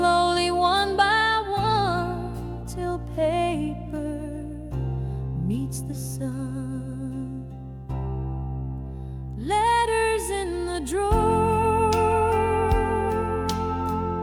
one by one till paper meets the sun. Letters in the drawer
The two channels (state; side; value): identical; both; correlation 1.00